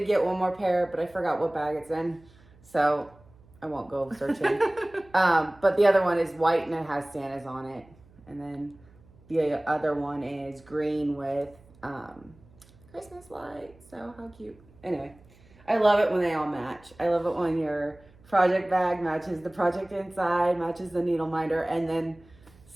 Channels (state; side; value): noise; right; hum, 27 dB below the sound